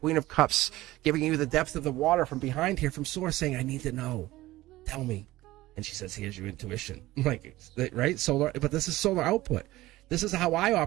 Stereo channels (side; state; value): left; quieter; 17.5 dB